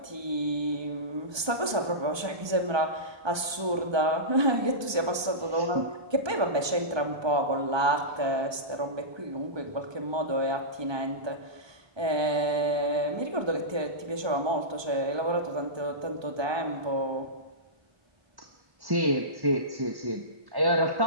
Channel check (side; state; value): left; late; 1.2 ms